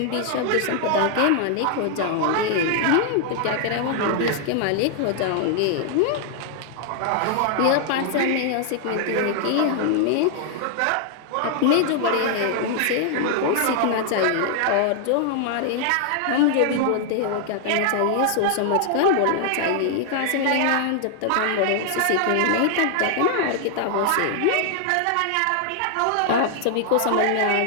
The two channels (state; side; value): different; both; correlation 0.00